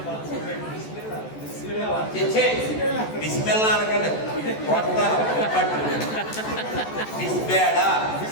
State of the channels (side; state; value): right; late; 14 ms